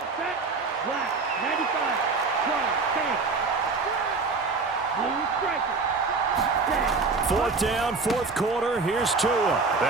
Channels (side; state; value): left; quieter; 4.2 dB